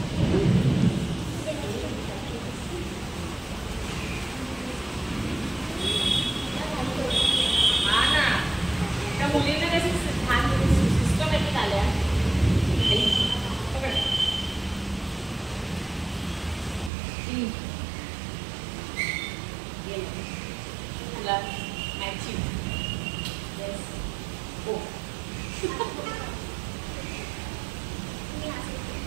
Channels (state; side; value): drops out; left; at 16.9 s